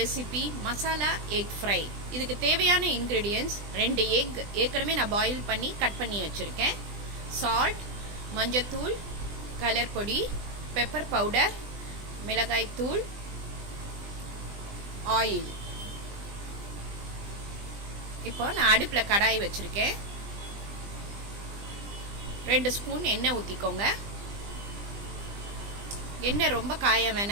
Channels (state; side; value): late; left; 20 ms